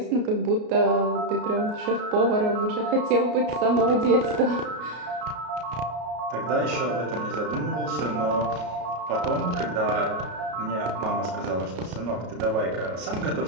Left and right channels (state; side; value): late; left; 33 ms